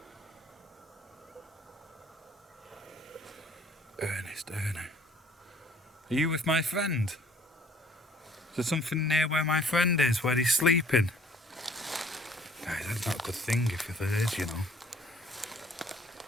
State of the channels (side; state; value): both; normal; correlation 0.56